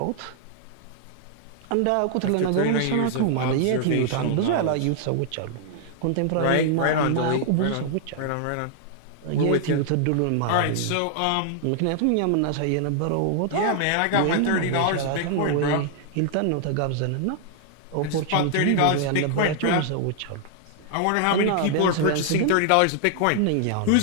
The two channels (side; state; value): both; different; correlation -0.01